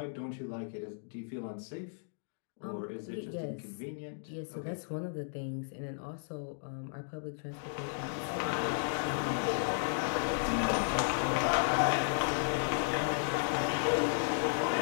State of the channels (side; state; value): right; silent; digital silence